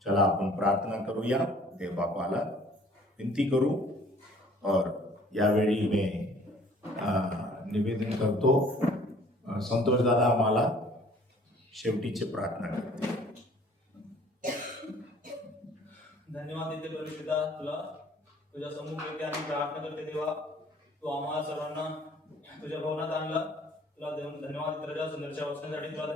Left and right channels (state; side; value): normal; both; correlation 0.55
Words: चला आपण प्रार्थना करूया. देव बापाला विनंती करू. और यावेळी मी निवेदन करतो. संतोष दादा आम्हाला शेवटीची प्रार्थना करते. धन्यवाद देते परमेश्वरा, तुला तुझ्या समोर येते आणि प्रार्थना करते. देवा, तू आम्हाला सर्वांना तुझ्या भवनात आणला. तुला धन्यवाद देते राजा. सुंदरच्या वचनासाठी तुला